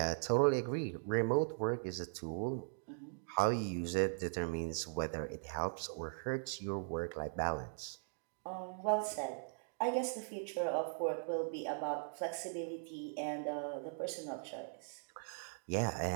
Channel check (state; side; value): silent; left; digital silence